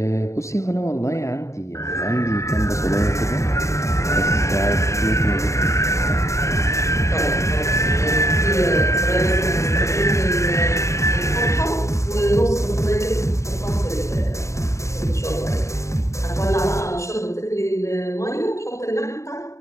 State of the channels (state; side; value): late; right; 0.14 ms